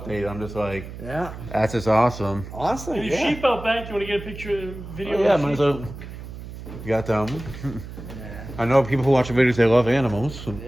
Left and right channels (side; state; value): right; noise; hum, 12 dB below the sound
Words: I'm just like, Yeah. that's just awesome. Awesome. And your Yeah. sheep out back, you want to get a picture, video Oh, yeah, of the man. sheep? So you got them. Yeah. I know people who watch the videos, they love animals.